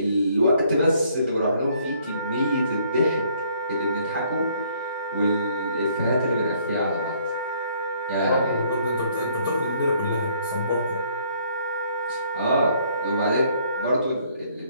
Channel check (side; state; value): both; inverted; correlation -0.64